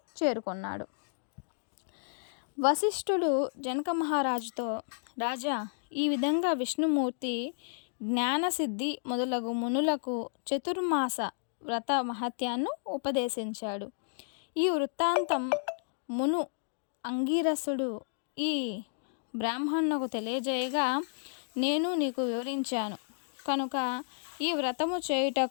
చేరుకున్నాడు. వశిష్ఠుడు జనక మహారాజుతో, రాజా, ఈ విధంగా విష్ణుమూర్తి జ్ఞానసిద్ధి మొదలగు మునులకు చతుర్మాస వ్రత మహత్యాన్ని ఉపదేశించాడు. ఈ వృత్తాంతం మును అంగీరసుడు ఈ బ్రాహ్మణులకు తెలియజేయగా నేను నీకు వివరించాను కనుక ఈ వ్రతము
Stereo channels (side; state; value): right; silent; digital silence